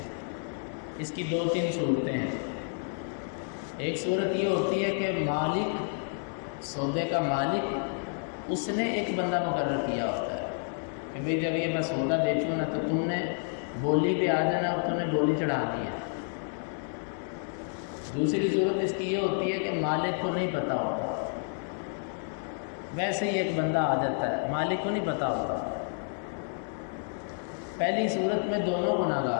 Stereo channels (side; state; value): right; silent; 58 dB below the other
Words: اس کی 2-3 صورتیں ہیں. ایک صورت یہ ہوتی ہے کہ مالک، سودے کا مالک، اس نے ایک بندہ مقرر کیا ہوتا ہے کہ بھئی جب یہ میں سودا بیچوں نا تو تم نے بولی پہ آ جانا اور تم نے بولی چڑھانی ہے. دوسری صورت اس کی یہ ہوتی ہے کہ مالک کو نہیں پتہ ہوتا، ویسے ہی ایک بندہ آ جاتا ہے، مالک کو نہیں پتہ ہوتا. پہلی صورت میں دونوں